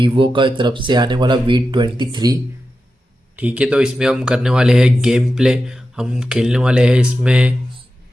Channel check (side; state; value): both; normal; correlation 0.91